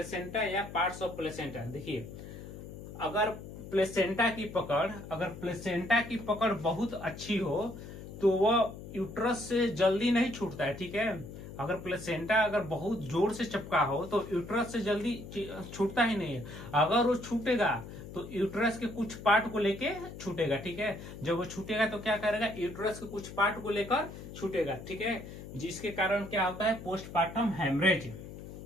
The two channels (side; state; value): left; noise; hum, 12 dB below the sound